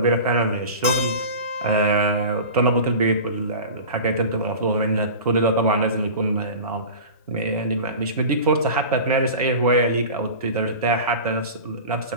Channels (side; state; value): both; inverted; correlation -0.34